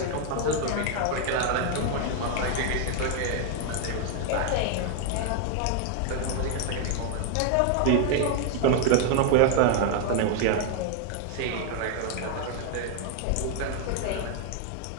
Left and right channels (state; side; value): different; both; correlation 0.01